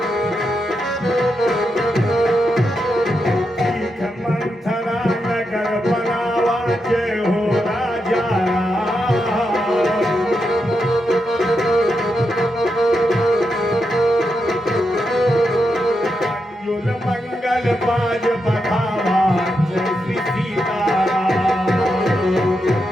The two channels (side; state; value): both; normal; correlation 0.85